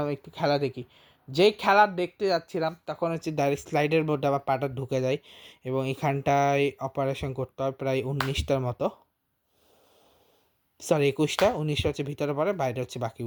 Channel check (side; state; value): both; identical; correlation 1.00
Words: একটু খেলা দেখি। যেই খেলা দেখতে যাচ্ছিলাম তখন হচ্ছে ডাইরেক্ট স্লাইডের মধ্যে আমার পাটা ঢুকে যায় এবং এখানটায় অপারেশন করতে হয় প্রায় 19টার মতো, সরি 21টা। 19টা হচ্ছে ভিতরে পড়ে, বাইরে হচ্ছে